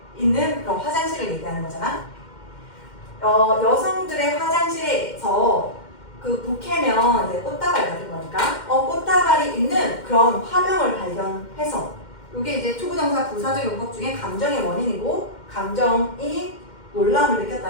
있는 그런 화장실을 얘기하는 거잖아. 여성들의 화장실에서 그 부케면 이제 꽃다발 같은 거니까 꽃다발이 있는 그런 화명을 발견해서 이게 이제 투부정사 부사적 용법 중에 감정의 원인이고 감정이 놀라움을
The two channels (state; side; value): late; right; 2.1 ms